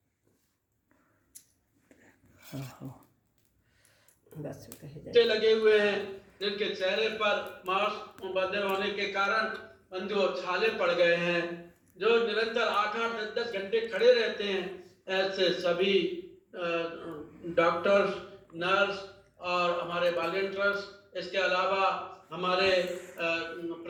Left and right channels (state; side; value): identical; both; correlation 1.00